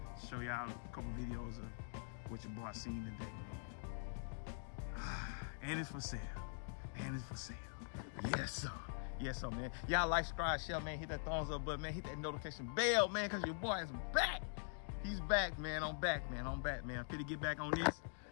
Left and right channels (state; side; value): silent; right; digital silence